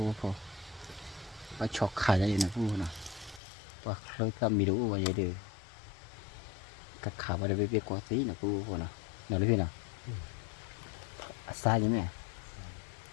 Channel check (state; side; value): drops out; right; at 3.4 s